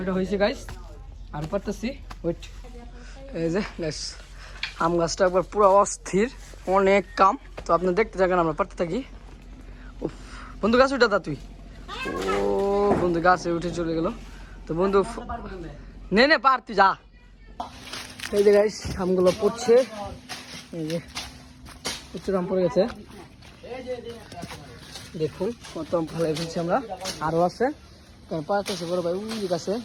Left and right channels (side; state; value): both; identical; correlation 1.00